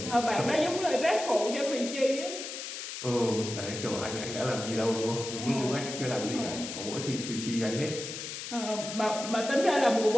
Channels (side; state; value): left; noise; hiss, 7 dB below the sound